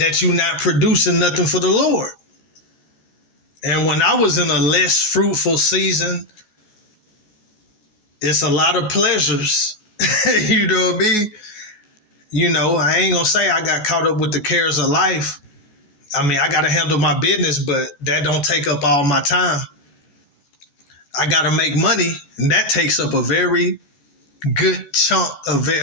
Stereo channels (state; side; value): late; right; 14 ms